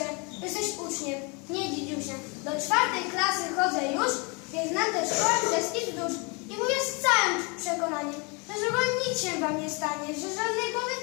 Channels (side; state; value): right; quieter; 31.7 dB